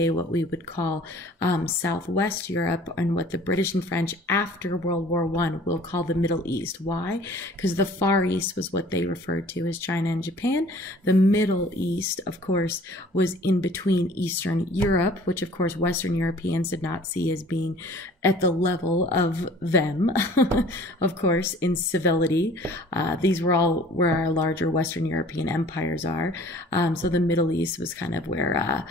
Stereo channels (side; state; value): both; normal; correlation 0.50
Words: what we would call southwest Europe, and what the British and French after World War I will call the Middle East. Why? Because the Far East was what they referred to as China and Japan. The Middle East, of course, was in between Eastern Europe, which of course Western Europeans did not see as being at the level of them, of course, in civility. These were all where our larger Western European empires are. So the Middle East was kind of where,